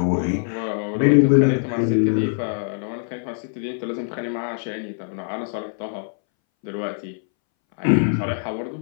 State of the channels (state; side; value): silent; right; 62 dB below the other